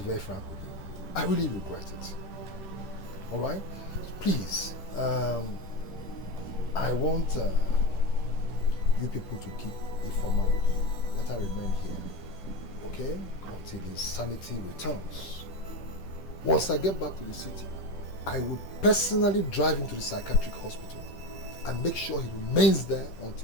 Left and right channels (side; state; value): right; late; 10 ms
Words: very frank with you. I really regret it. All right? Please, I want you people to keep Ifeoma with you. Let her remain here, okay? Until his sanity returns. Once I get back to the city, I will personally drive him to the psychiatric hospital and make sure he remains there